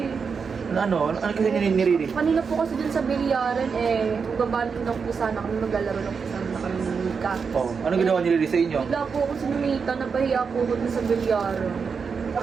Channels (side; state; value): left; quieter; 5.7 dB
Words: Ano kasi niririnig? Kanina po kasi dun sa bilyaran magbabalik lang po sana kami, maglalaro lang po sana kami ng Mika. Oh, ano ginawa nila sa inyo? Bigla po ako sinumita, napahiya po ako dun sa bilyaran.